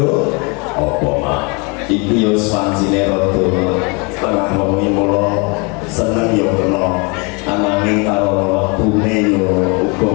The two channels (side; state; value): right; quieter; 30.9 dB